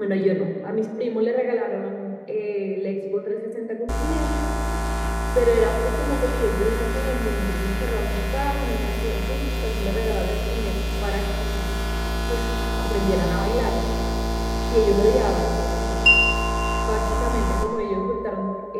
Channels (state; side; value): identical; both; correlation 1.00